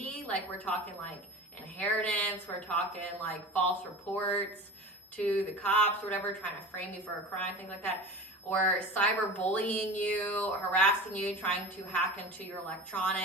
like we're talking like inheritance, we're talking like false reports to the cops or whatever, trying to frame you for a crime, things like that, or cyberbullying you, harassing you, trying to hack into your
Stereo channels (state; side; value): normal; both; correlation 0.34